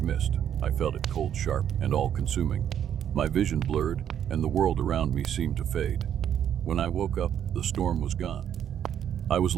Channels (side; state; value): left; quieter; 9.6 dB